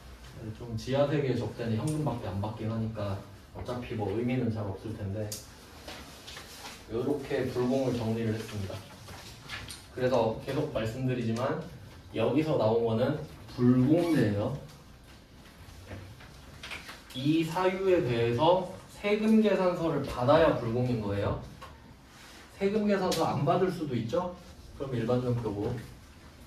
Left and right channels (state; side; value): identical; both; correlation 1.00